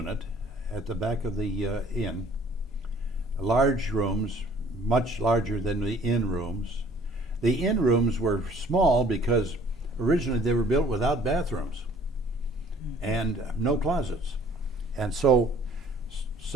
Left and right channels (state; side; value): normal; both; correlation 0.55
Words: at the back of the inn. Large rooms, much larger than the inn rooms. The inn rooms were small because originally they were built without bathrooms and no closets. And so